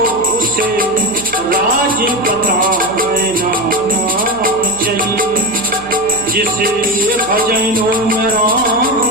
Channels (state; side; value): noise; right; hum, 20 dB below the sound